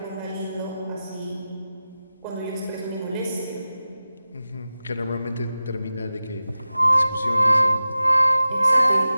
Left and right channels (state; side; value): inverted; both; correlation -0.94